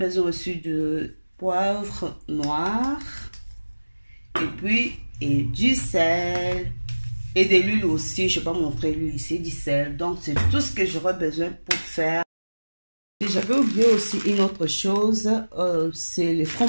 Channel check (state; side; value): inverted; both; correlation -1.00